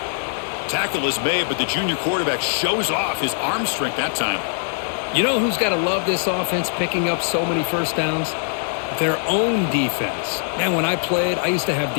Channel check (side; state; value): right; silent; digital silence